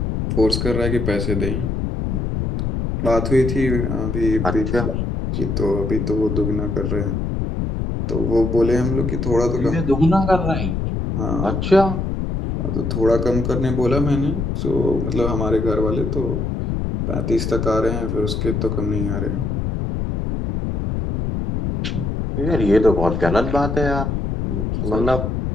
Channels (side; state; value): left; noise; rumble, 1 dB below the sound